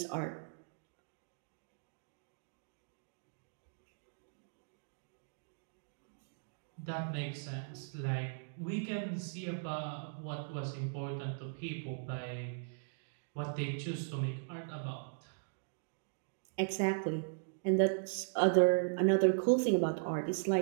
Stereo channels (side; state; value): left; silent; digital silence